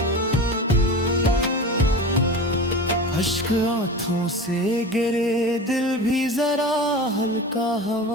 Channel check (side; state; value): both; normal; correlation 0.31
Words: अश्क आंखों से गिरे, दिल भी जरा हल्का